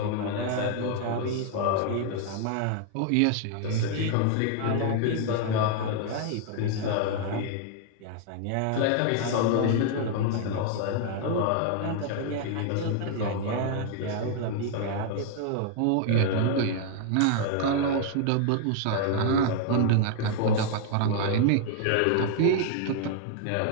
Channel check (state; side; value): different; both; correlation 0.00